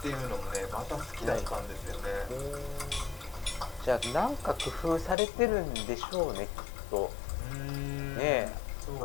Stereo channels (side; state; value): right; drops out; at 5.2 s